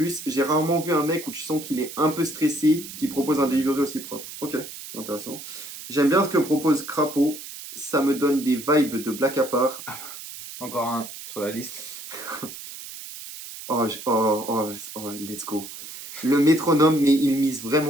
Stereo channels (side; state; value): right; noise; hiss, 12 dB below the sound